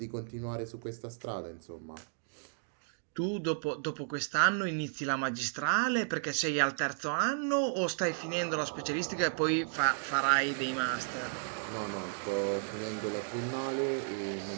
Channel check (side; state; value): left; silent; digital silence